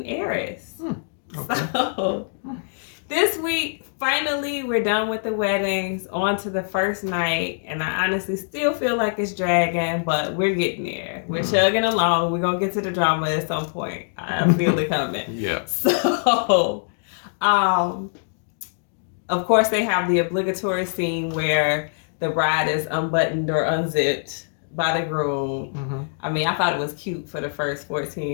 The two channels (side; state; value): right; silent; digital silence